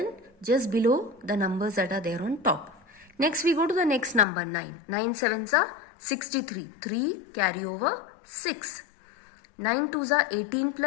just below the numbers that are there on top. Next we go to the next number 9. 9 sevens are 63. 3 carry over 6. 9 twos are 18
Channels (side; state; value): right; drops out; at 4.2 s